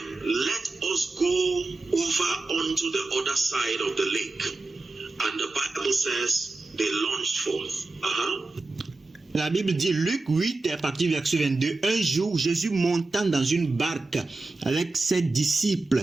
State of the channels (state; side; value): quieter; left; 3.3 dB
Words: let us go over unto the other side of the lake. And the Bible says they launched forth. La Bible dit, Luc 8, à partir du verset 22, un jour, Jésus montant dans une barque avec ses